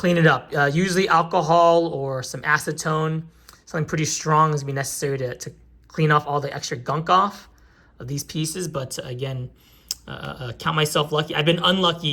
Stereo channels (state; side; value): identical; both; correlation 1.00